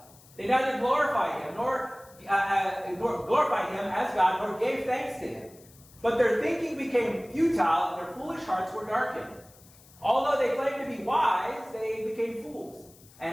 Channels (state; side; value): noise; left; hiss, 25 dB below the sound